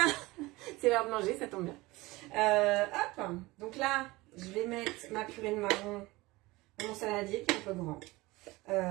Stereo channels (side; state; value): left; quieter; 21.1 dB